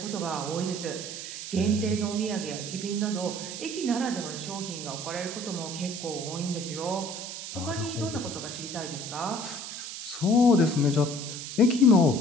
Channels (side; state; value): right; noise; hiss, 8 dB below the sound